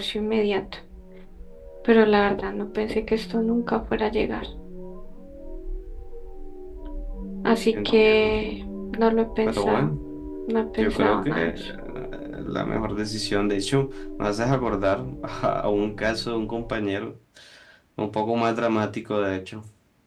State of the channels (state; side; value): identical; both; correlation 1.00